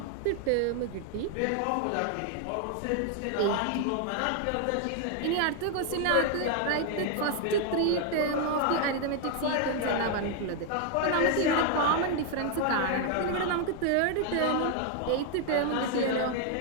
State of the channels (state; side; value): different; both; correlation 0.00